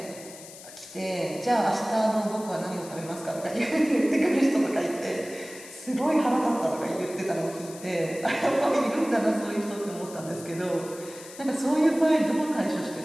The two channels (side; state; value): left; noise; hiss, 16 dB below the sound